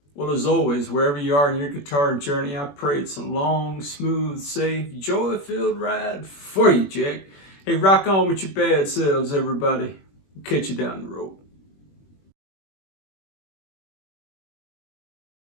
Well, as always, wherever you are in your guitar journey, I pray it's a long, smooth, safe, joy-filled ride for you, Jack. Hey, rock on with your bad selves, everybody. Catch you down the road.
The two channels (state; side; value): late; right; 21 ms